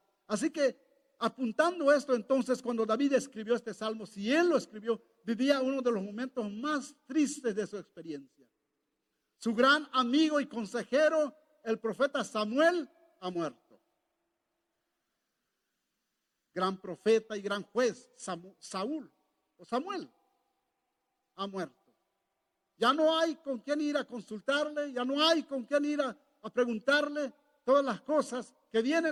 Así que apuntando esto, entonces, cuando David escribió este salmo, si él lo escribió, vivía uno de los momentos más tristes de su experiencia. Su gran amigo y consejero, el profeta Samuel, ha muerto. Gran profeta y gran juez, Samuel ha muerto. Ya no hay con quién ir a consultarle, ya no hay con quién ir a preguntarle todas las cosas que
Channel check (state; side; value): identical; both; correlation 1.00